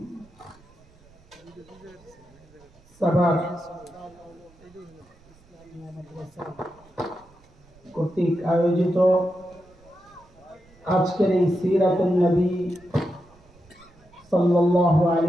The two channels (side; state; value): right; noise; rumble, 28 dB below the sound